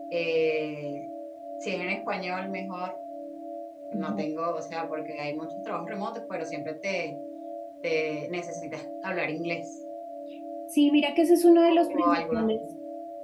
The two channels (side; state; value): both; identical; correlation 1.00